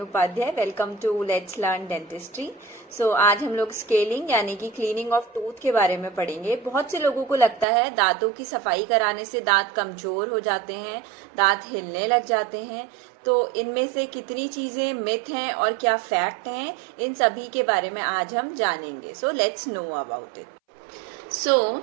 Welcome to let's learn dentistry. आज हम लोग scaling यानी कि क्लीनिंग ऑफ टूथ के बारे में पढ़ेंगे। बहुत से लोगों को लगता है दांतों की सफाई कराने से दांत कमजोर हो जाते हैं, दांत हिलने लग जाते हैं। तो इनमें से कितनी चीजें मिथ हैं और क्या फैक्ट हैं, इन सभी के बारे में आज हम जानेंगे। So let's know about it.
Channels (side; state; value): left; drops out; at 7.7 s